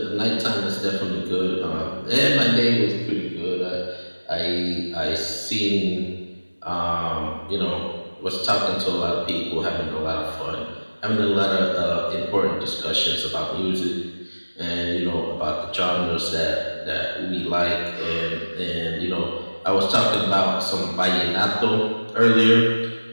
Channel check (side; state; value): both; inverted; correlation -1.00